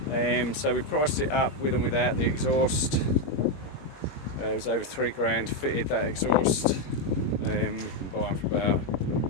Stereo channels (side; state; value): right; late; 21 ms